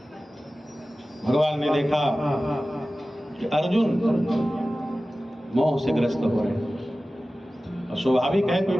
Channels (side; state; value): both; normal; correlation 0.96